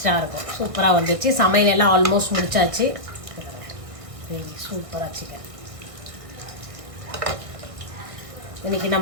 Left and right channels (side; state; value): left; late; 1.6 ms